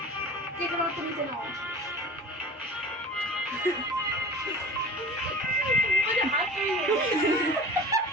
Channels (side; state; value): both; normal; correlation 0.38